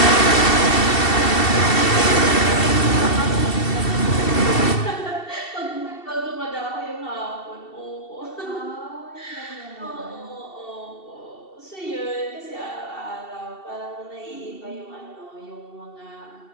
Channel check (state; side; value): late; right; 2.7 ms